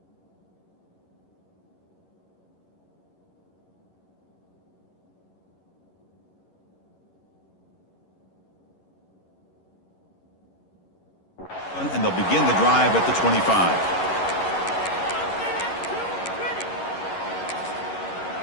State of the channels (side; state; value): right; late; 11 ms